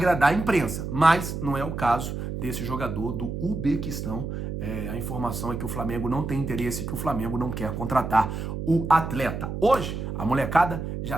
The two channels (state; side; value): noise; right; hum, 5 dB below the sound